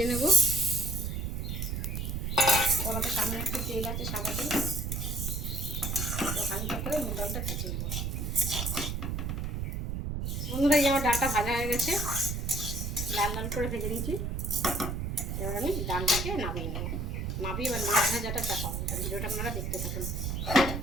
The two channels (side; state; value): right; noise; rumble, 2 dB below the sound